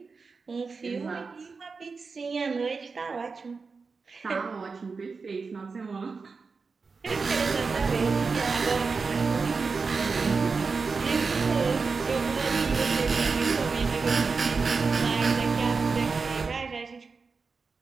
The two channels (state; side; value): quieter; left; 4.6 dB